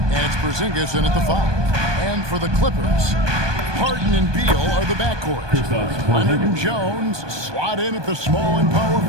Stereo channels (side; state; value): left; late; 1.2 ms